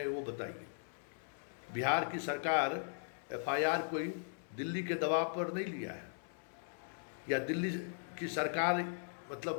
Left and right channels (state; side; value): silent; right; 52 dB below the other